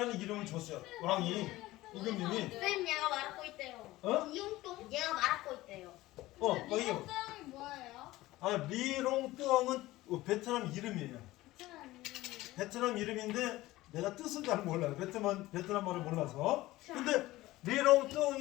이름을 줬어요. 왕이 임금님이. 쌤 얘가 말하고 있대요. 이용똥? 얘가 말하고 있대요. 거기. 뭐예요? 리롱뚱은 베트남 이름이에요. 베트남 이름인데 내가 뜻은 잘 몰라요. 베트남말을 몰라서. 근데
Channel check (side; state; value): right; quieter; 17.7 dB